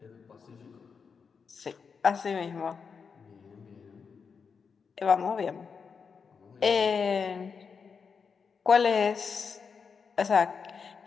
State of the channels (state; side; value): quieter; right; 5.8 dB